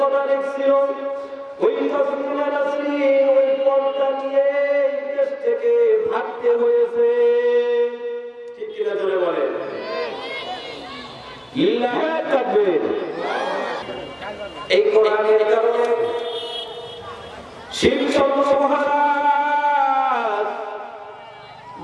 কথা লিখছিল, ওই তাসলিমা নাসরিন ওই পর্দা নিয়ে দেশ থেকে ভাগতে হয়েছে। ঠিক কিনা জোরে বলেন। লিল্লাহি তাকবীর। এই কোরআনের কারণে শিবচন্দ্র মহারাজ,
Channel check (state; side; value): identical; both; correlation 1.00